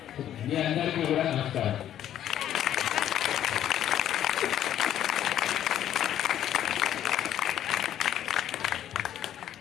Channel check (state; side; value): quieter; right; 11.1 dB